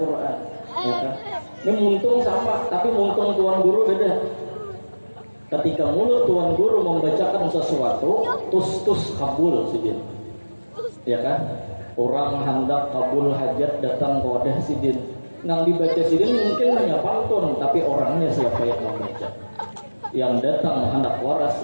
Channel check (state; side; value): inverted; both; correlation -1.00